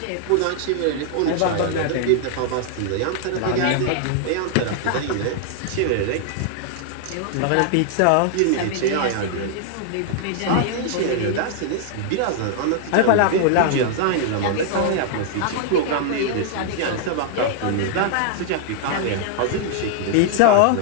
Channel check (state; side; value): different; both; correlation -0.01